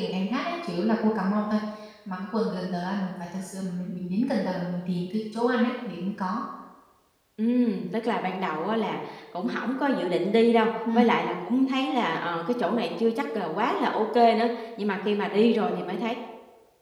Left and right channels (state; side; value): identical; both; correlation 1.00